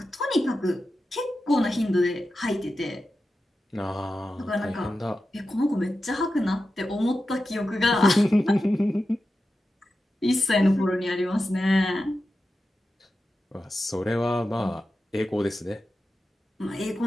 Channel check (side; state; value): both; normal; correlation 0.92